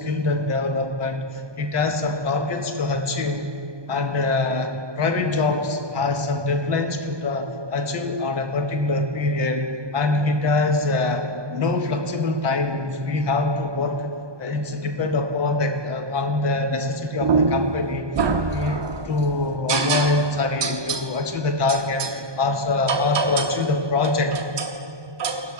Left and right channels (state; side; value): late; left; 1.2 ms